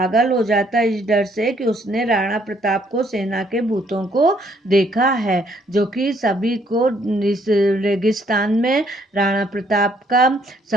हो जाता इस डर से कि उसने राणा प्रताप को सेना के भूतों को देखा है, जो कि सभी को इस रेगिस्तान में राणा प्रताप का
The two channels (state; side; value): normal; both; correlation 0.67